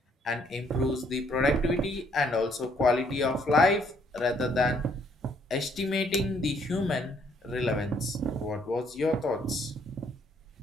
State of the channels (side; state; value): both; normal; correlation 0.67